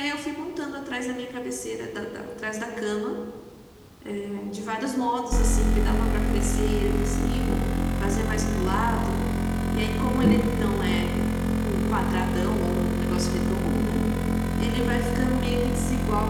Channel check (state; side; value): identical; both; correlation 1.00